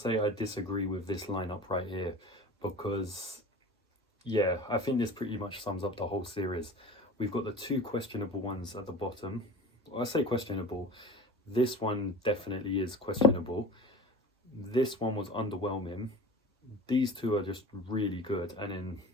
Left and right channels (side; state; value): both; normal; correlation 0.37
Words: I disagree with this lineup right here, because yeah, I think this pretty much sums up the whole series. We've got the 2 questionable ones at the bottom. I say questionable, this one definitely is questionable. This one was underwhelming. These 2 are just really good, and then